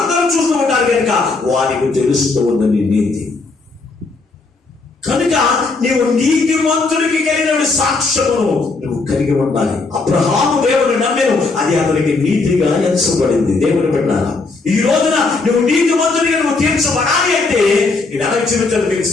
చూస్తూ ఉంటారు కనుక వారికి తెలుస్తూ ఉంది నీ నీతి. కనుక నీవు నీతిమంతుడికి కలిగిన సాక్ష్యమును నువ్వు కలిగి ఉండాలి. అబ్రహాము దేవుని నమ్మెను, అది అతనికి నీతిగా ఎంచబడింది. దేవుని బిడ్డలారా, ఈ రోజున నువ్వు నీతిమంతుడిగా నువ్వు తీర్చబడాలి అంటే నేను ఎలా జీవించాలి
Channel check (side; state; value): right; quieter; 3.8 dB